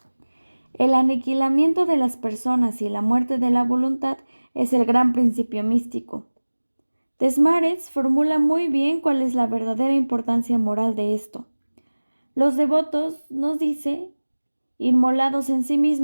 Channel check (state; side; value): inverted; both; correlation -1.00